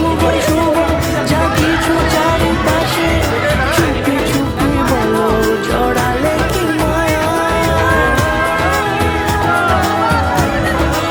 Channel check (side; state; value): both; identical; correlation 1.00